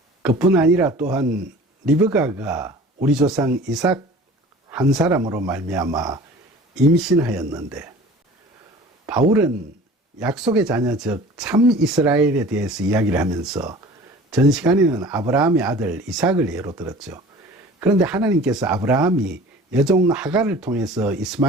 그뿐 아니라 또한 리브가가 우리 조상 이삭 한 사람으로 말미암아 임신하였는데, 바울은 약속의 자녀 즉 참 이스라엘에 대해서 이야기를 하면서 전 시간에는 아브라함의 아들 이삭을 예로 들었죠. 그런데 하나님께서 아브라함이 여종 하갈을 통해서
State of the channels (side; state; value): both; normal; correlation 0.43